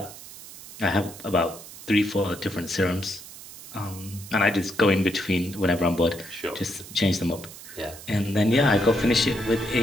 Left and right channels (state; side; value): noise; right; hiss, 16 dB below the sound